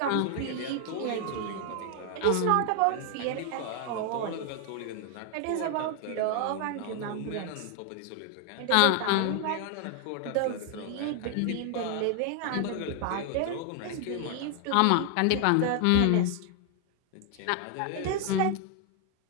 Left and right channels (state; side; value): different; both; correlation 0.00